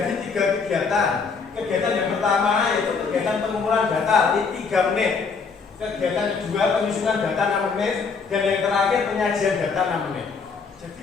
3 kegiatan. Kegiatan yang pertama yaitu kegiatan pengumpulan data di 3 menit. Kegiatan kedua penyusunan data 6 menit, dan yang terakhir penyajian data 6 menit.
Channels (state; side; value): quieter; right; 5.1 dB